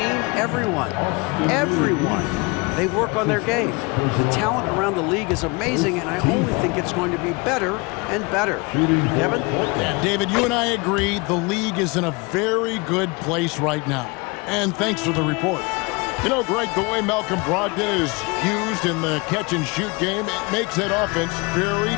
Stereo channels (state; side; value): quieter; right; 27.7 dB